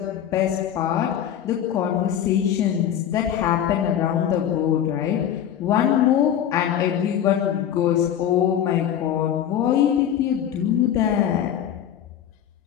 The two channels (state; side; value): quieter; right; 10.0 dB